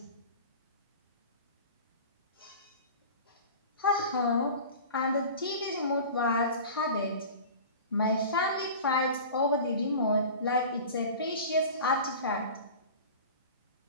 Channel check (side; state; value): both; inverted; correlation -0.37